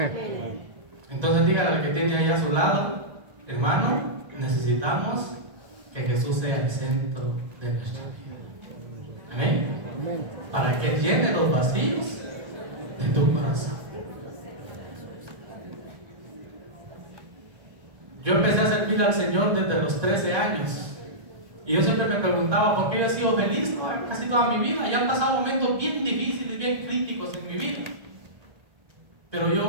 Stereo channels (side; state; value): left; late; 1.9 ms